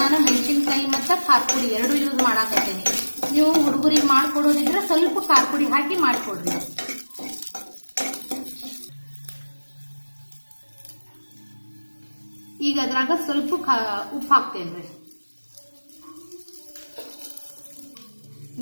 ನಾನು ಮೆಣಸಿನ್ಕಾಯಿ ಮತ್ತು ಖಾರ ಪುಡಿ ಎರಡು ಯೂಸ್ ಮಾಡಾಕತ್ತೀನಿ. ನೀವು ಹುಡುಗರಿಗೆ ಮಾಡ್ಕೊಡೋದಿದ್ರೆ ಸ್ವಲ್ಪ ಖಾರ ಪುಡಿ ಹಾಕಿ ಮಾಡ್ಕೊಡ್ರಿ. ಈಗ ಅದ್ರಾಗ ಸ್ವಲ್ಪ ಉಪ್ಪು ಹಾಕ್ತೇನ್ರಿ.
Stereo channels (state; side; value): inverted; both; correlation -1.00